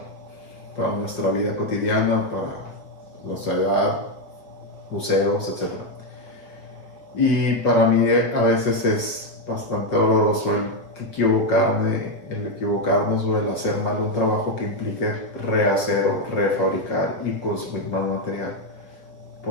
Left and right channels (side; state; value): right; late; 6.0 ms